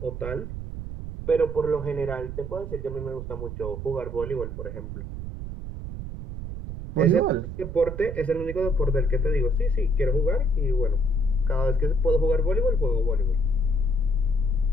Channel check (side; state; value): right; noise; rumble, 7 dB below the sound